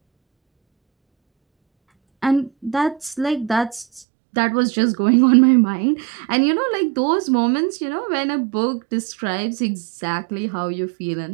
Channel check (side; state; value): left; drops out; at 4.0 s